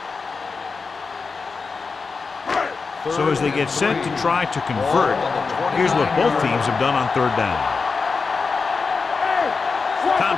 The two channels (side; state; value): right; quieter; 4.6 dB